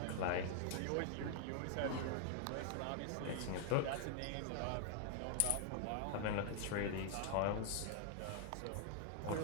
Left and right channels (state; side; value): different; both; correlation 0.00